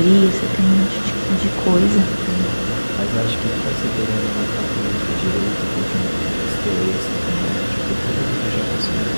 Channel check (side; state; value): both; inverted; correlation -1.00